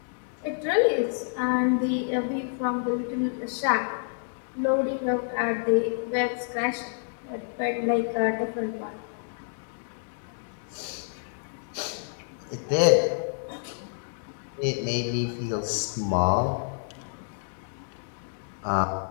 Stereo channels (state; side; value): silent; right; digital silence